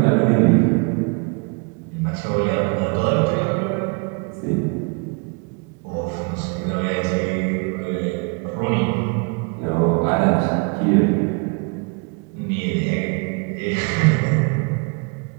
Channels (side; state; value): left; quieter; 32.9 dB